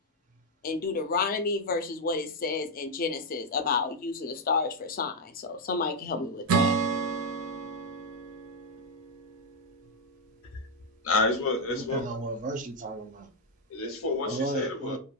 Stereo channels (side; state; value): both; normal; correlation 0.01